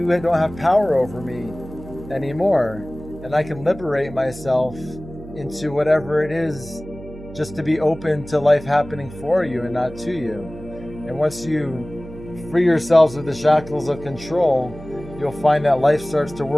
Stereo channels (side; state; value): right; noise; hum, 15 dB below the sound